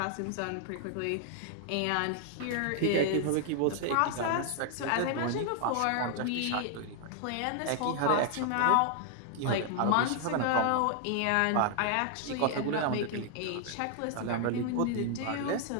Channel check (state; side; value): different; both; correlation 0.00